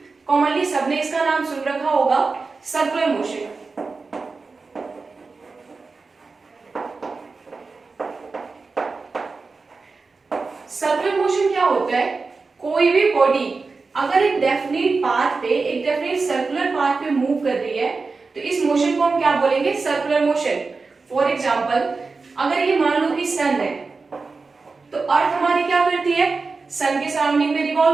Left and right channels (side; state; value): left; quieter; 4.2 dB